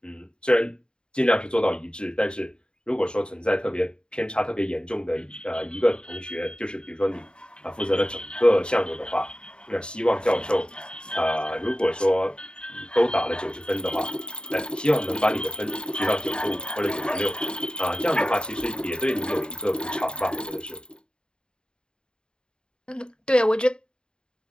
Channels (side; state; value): right; late; 0.050 ms